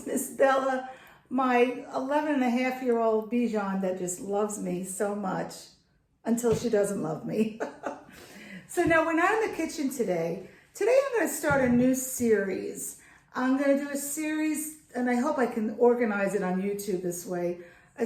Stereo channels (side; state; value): both; identical; correlation 1.00